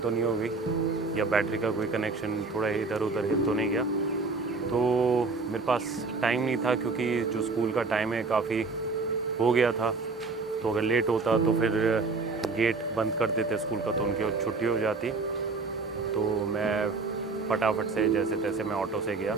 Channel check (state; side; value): quieter; left; 4.0 dB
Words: तो नहीं हो गई या बैटरी का कोई कनेक्शन थोड़ा इधर उधर हिल तो नहीं गया। तो मेरे पास टाइम नहीं था क्योंकि जो स्कूल का टाइम है काफ़ी हो गया था। तो अगर लेट होता तो फिर गेट बंद कर देते स्कूल का, तो उनकी छुट्टी हो जाती। तो मैं फटाफट से जैसे तैसे मैं ऑटो से गया,